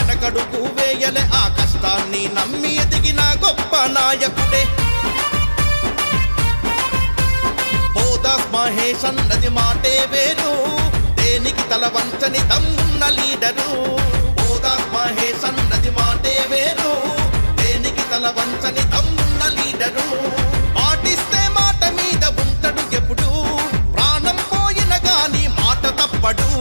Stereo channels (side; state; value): both; inverted; correlation -1.00